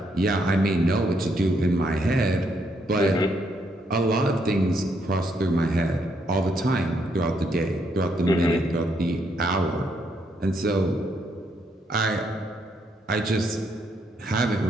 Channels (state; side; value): normal; both; correlation 0.75